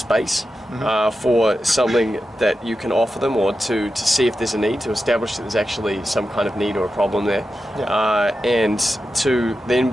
for something that you can offer them, or to see if there's a need, to establish that there's actually some kind of need or a problem there, and to then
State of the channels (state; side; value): normal; both; correlation 0.91